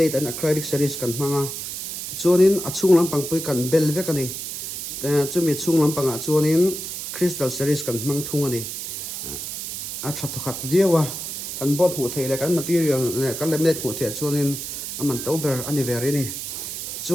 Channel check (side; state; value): right; noise; hiss, 6 dB below the sound